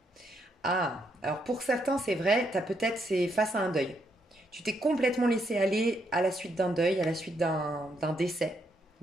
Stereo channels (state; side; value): normal; both; correlation 0.76